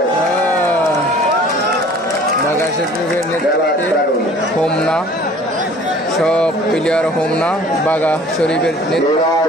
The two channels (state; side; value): normal; both; correlation 0.50